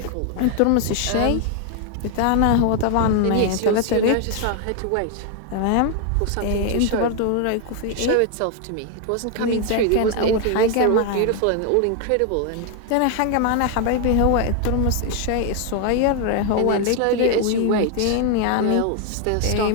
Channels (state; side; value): different; both; correlation 0.01